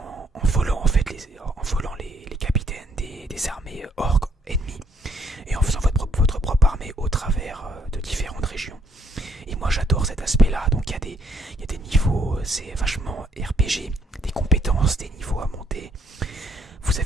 volant en fait les capitaines des armées orques ennemies, et en faisant votre propre armée au travers de différentes régions. Et moi j'adore cet aspect là, donc il y a des niveaux, c'est vachement RPG, des compétences, des niveaux à monter. Vous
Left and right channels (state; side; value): normal; both; correlation 0.69